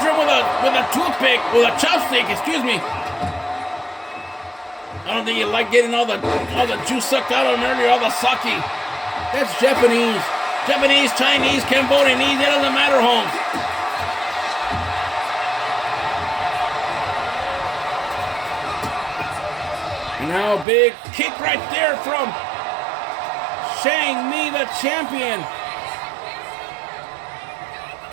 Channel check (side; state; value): left; drops out; at 20.7 s